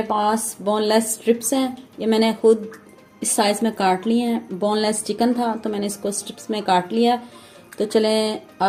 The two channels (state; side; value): identical; both; correlation 1.00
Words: पास बोनलेस स्ट्रिप्स हैं, ये मैंने खुद इस साइज़ में काट लिए हैं। बोनलेस चिकन था तो मैंने इसको स्ट्रिप्स में काट लिया। तो चलें